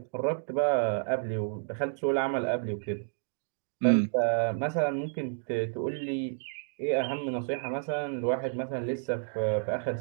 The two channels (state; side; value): silent; left; digital silence